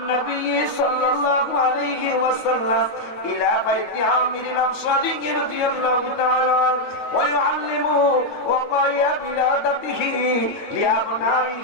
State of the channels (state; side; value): late; right; 9.3 ms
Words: صلى الله عليه وسلم الى بيت عامر الانصاري رضي الله تعالى عنه ويعلمه وقايا بلادته